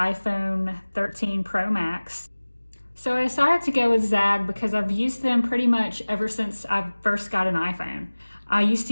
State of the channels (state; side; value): inverted; both; correlation -1.00